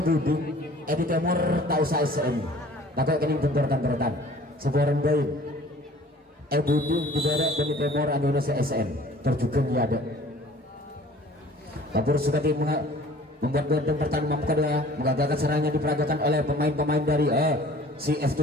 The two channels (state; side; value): normal; both; correlation 0.49